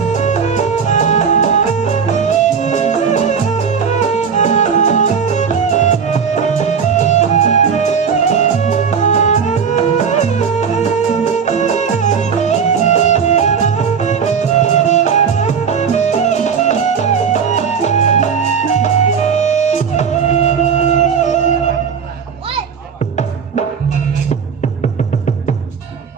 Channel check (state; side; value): quieter; left; 6.6 dB